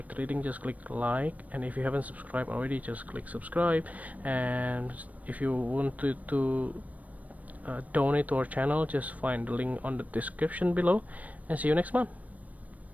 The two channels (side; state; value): left; late; 0.071 ms